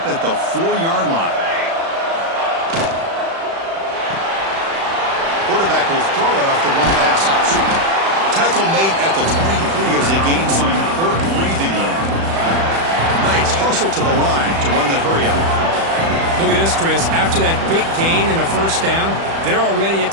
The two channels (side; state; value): left; late; 36 ms